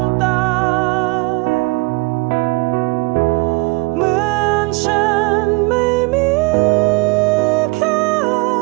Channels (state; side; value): quieter; left; 26.0 dB